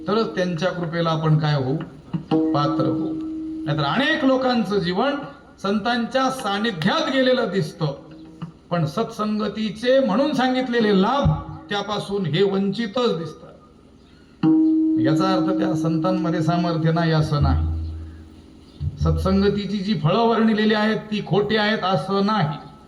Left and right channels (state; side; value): identical; both; correlation 1.00